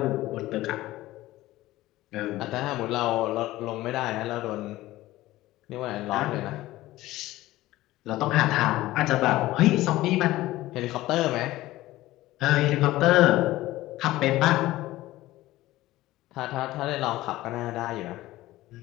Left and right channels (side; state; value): right; quieter; 16.8 dB